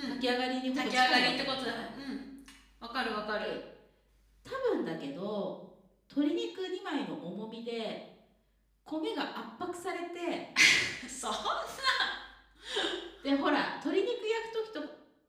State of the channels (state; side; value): identical; both; correlation 1.00